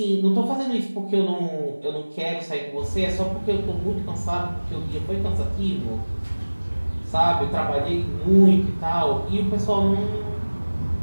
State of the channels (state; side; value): inverted; both; correlation -1.00